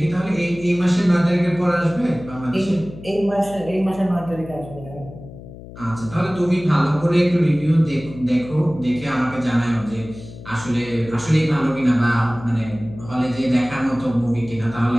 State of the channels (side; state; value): left; noise; hum, 16 dB below the sound